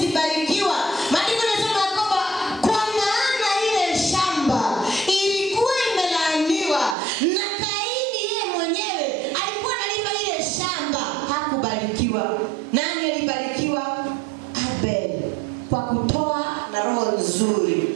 alibarikiwa? Nani alibarikiwa? Abel, kwa kutoa na roho nzuri,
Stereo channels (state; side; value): drops out; left; at 7.0 s